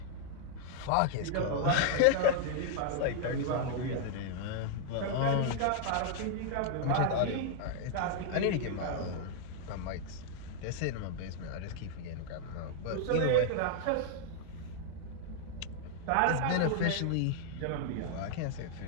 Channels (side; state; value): both; different; correlation 0.00